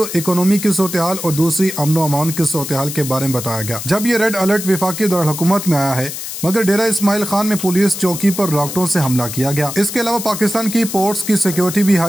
इकोनॉमी की सूरत-ए-हाल और दूसरी अमन अमान की सूरत-ए-हाल के बारे में बताया गया। जब ये रेड अलर्ट वफाकी दारुल-हुकूमत में आया है, मगर डेरा इस्माइल खान में पुलिस चौकी पर रॉकेटों से हमला किया गया। इसके अलावा पाकिस्तान की पोर्ट्स की सिक्योरिटी भी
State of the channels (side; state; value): left; noise; hiss, 8 dB below the sound